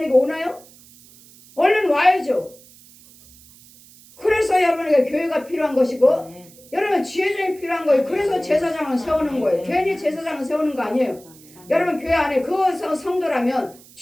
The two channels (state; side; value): noise; right; hiss, 24 dB below the sound